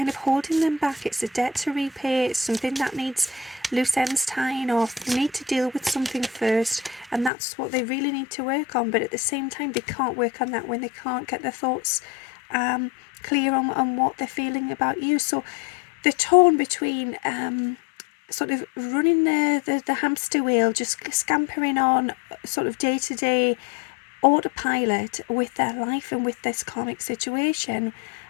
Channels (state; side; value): drops out; right; at 7.3 s